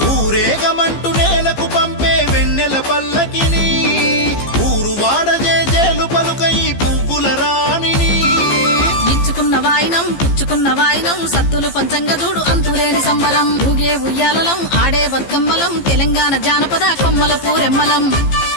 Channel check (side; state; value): right; late; 15 ms